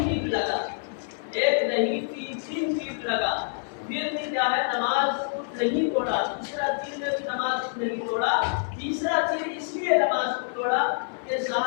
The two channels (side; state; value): right; silent; 57 dB below the other